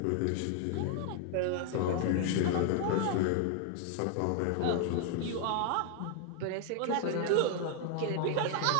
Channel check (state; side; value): different; both; correlation 0.00